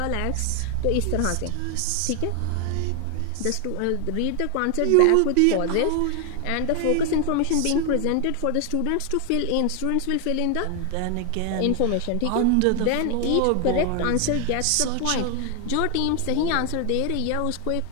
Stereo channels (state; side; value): different; both; correlation 0.01